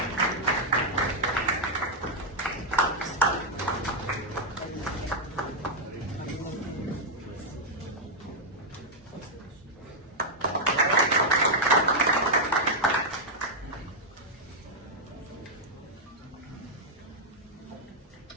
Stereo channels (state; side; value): normal; both; correlation -0.03